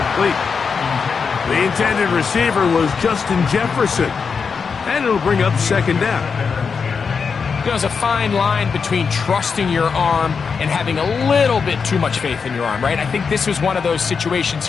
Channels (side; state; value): right; quieter; 5.6 dB